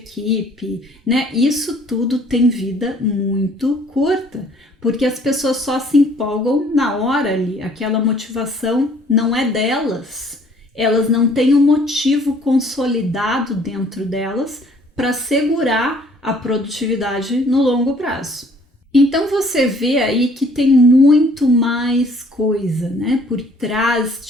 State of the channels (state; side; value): normal; both; correlation 0.58